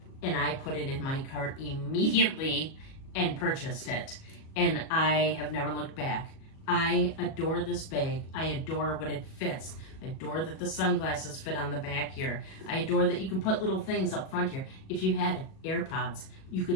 and I put it in my cart immediately and purchased it. And I have never looked back. I adore this bag. I adore what it fits. I adore that the sunglasses fit on the back here. I adore that you can put little things up front here. If you had AirPods, you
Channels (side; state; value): right; late; 37 ms